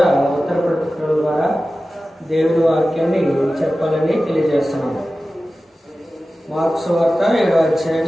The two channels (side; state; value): both; normal; correlation 0.95